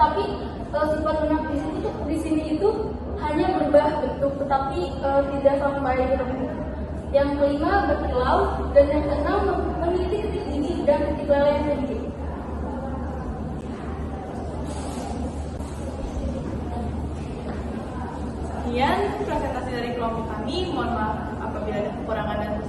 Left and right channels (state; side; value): identical; both; correlation 1.00